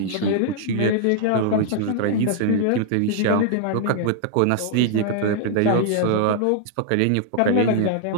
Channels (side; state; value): both; different; correlation -0.01